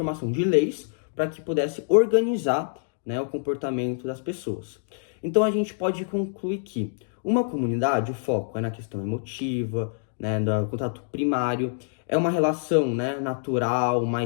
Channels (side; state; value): right; silent; digital silence